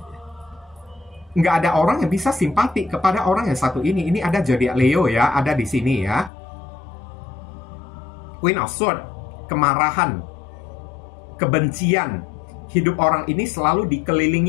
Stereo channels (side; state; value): right; drops out; at 6.3 s